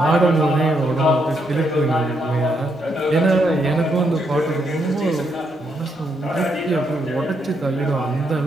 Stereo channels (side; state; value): both; normal; correlation 0.77